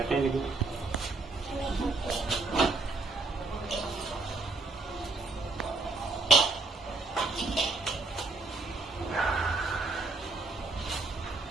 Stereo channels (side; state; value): left; quieter; 3.5 dB